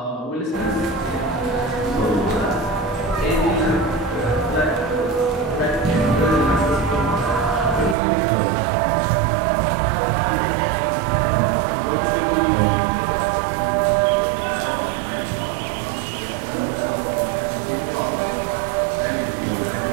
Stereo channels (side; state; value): left; drops out; at 8.0 s